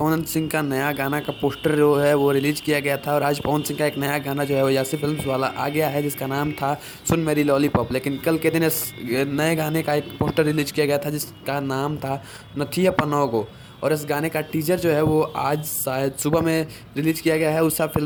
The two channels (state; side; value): identical; both; correlation 1.00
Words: सिंह का नया गाना का पोस्टर जो है वो रिलीज किया गया था और आज पवन सिंह का एक नया गाना जो है वो यासी फिल्म्स वाला आ गया है जिसका नाम था सुन मेरी लॉलीपॉप। लेकिन कल के दिन इस नए गाने का एक पोस्टर रिलीज किया गया था जिसका नाम था नथिया पनोगो। और इस गाने का टीजर जो है वो आज शायद सुबह में रिलीज किया गया है उषा